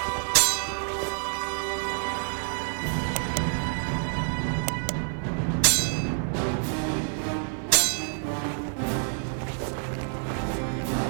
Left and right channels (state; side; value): silent; left; 60 dB below the other